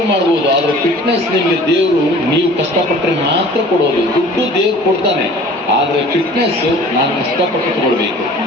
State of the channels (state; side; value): normal; both; correlation 0.47